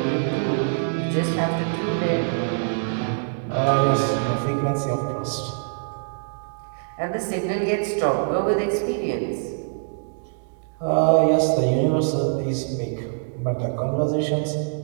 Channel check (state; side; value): silent; left; digital silence